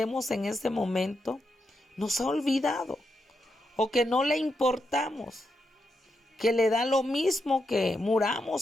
en ese momento, nos ha olvidado o que no le importamos, que le da lo mismo que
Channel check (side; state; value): both; normal; correlation 0.84